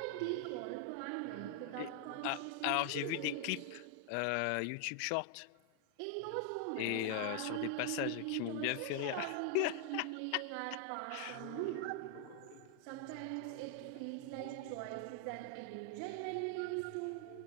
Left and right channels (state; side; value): different; both; correlation 0.00